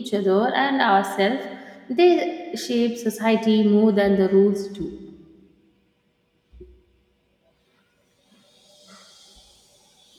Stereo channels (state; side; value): identical; both; correlation 1.00